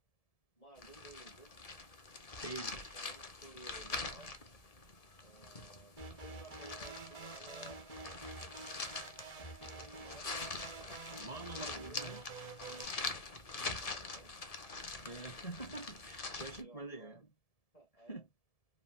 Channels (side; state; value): right; late; 1.7 ms